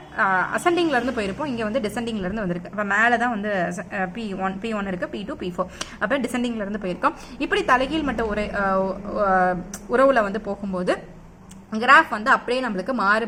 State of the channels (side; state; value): both; identical; correlation 1.00